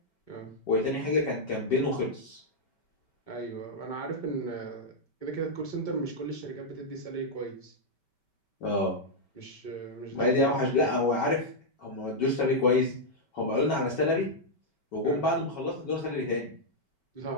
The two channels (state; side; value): late; right; 5.2 ms